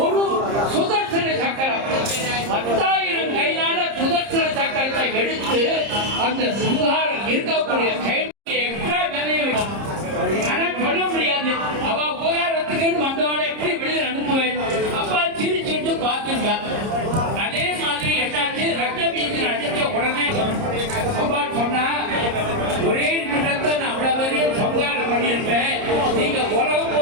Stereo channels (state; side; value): late; left; 30 ms